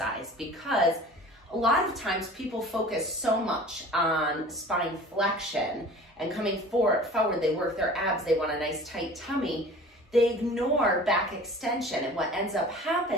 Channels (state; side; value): normal; both; correlation 0.43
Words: because a lot of times people focus so much on spine flexion and coming forward, they work their abs, they want a nice tight tummy, they ignore back extension, and what ends up